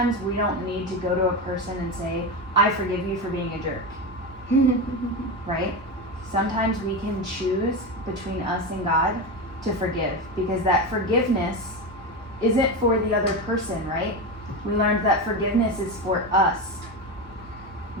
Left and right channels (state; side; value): normal; both; correlation 0.18